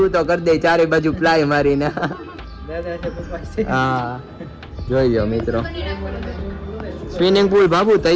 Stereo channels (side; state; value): both; identical; correlation 1.00